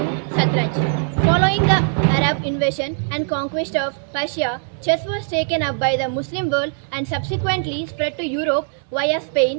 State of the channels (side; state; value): left; silent; 60 dB below the other